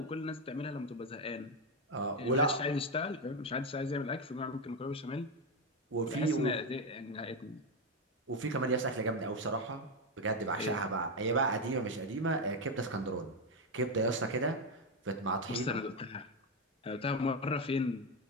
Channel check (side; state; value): both; normal; correlation 0.08